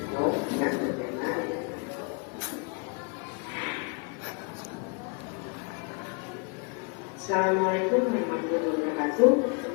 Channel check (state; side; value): quieter; right; 33.1 dB